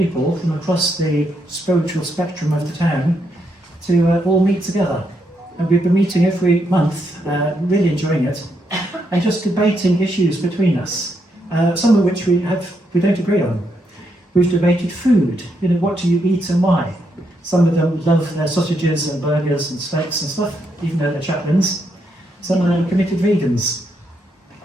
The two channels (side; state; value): both; normal; correlation 0.78